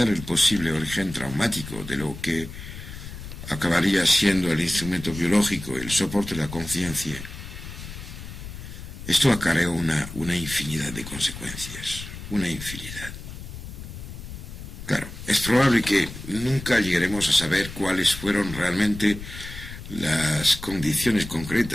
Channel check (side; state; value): left; noise; rumble, 11 dB below the sound